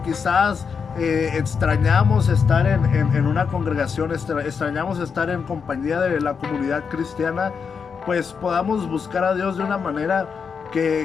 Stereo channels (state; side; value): quieter; right; 6.0 dB